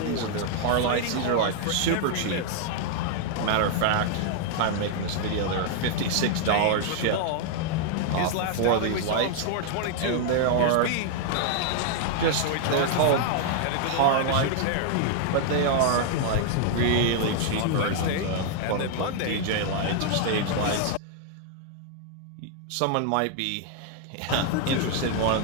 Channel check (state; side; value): different; both; correlation 0.00